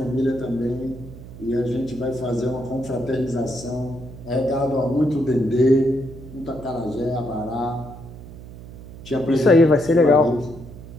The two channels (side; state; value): right; noise; hum, 15 dB below the sound